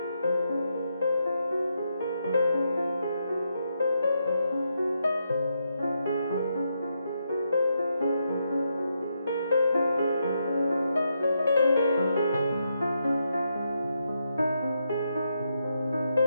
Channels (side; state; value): both; inverted; correlation -0.81